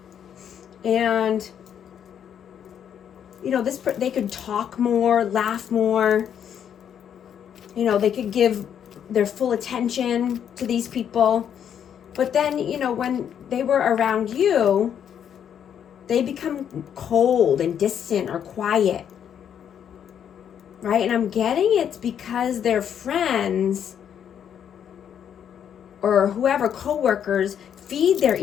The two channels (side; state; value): right; quieter; 8.8 dB